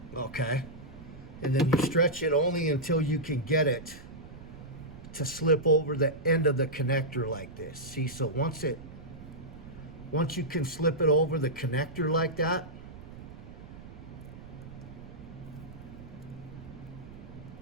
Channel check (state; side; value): noise; right; rumble, 15 dB below the sound